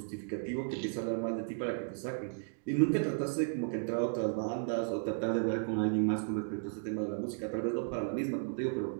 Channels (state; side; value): silent; left; digital silence